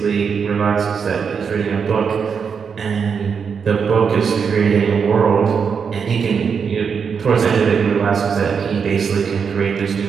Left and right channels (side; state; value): left; quieter; 6.3 dB